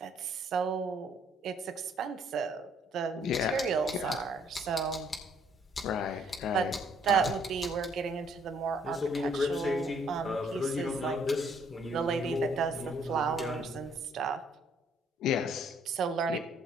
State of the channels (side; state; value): both; normal; correlation 0.65